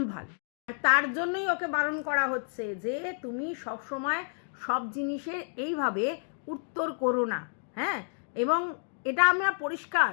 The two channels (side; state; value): right; silent; 56 dB below the other